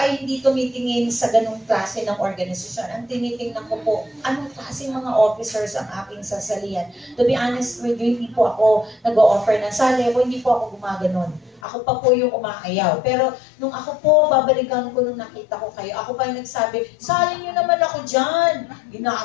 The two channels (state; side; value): drops out; right; at 11.6 s